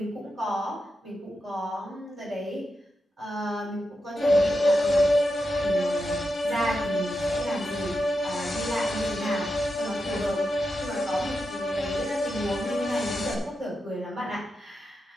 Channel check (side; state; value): both; normal; correlation 0.87